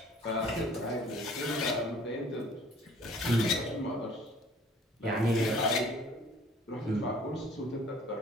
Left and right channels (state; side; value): normal; both; correlation 0.53